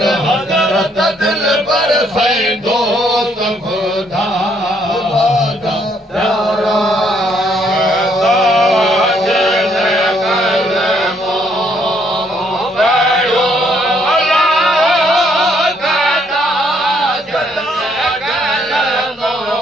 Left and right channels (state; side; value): normal; both; correlation 0.69